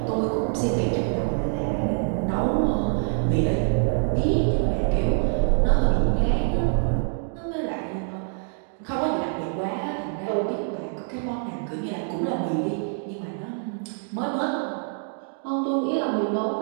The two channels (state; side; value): silent; left; 61 dB below the other